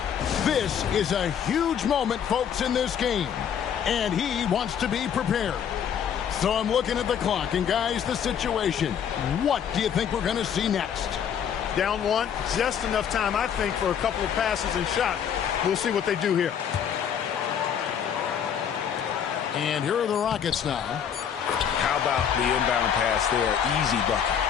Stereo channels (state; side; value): quieter; right; 8.3 dB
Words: This is a huge moment, folks, in this game. And he wants to be prepared. So I'm looking at the clock, and guys, the situation. What do you think we're going to see next? Down one, just enough time, I think, for a couple of passes and shots. We'll see what they do here. And here are the Rockets now. How about the inbound pass there? Easy bucket.